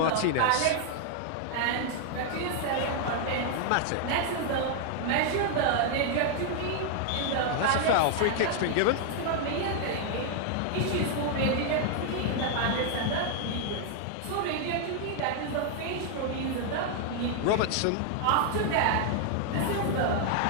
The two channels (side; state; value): both; different; correlation 0.00